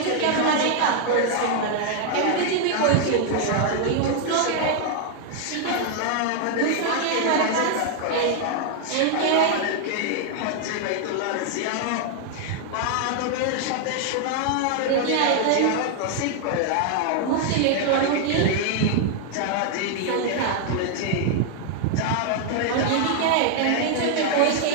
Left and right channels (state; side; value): different; both; correlation 0.00